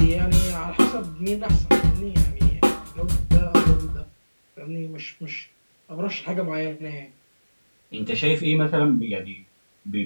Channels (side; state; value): both; inverted; correlation -1.00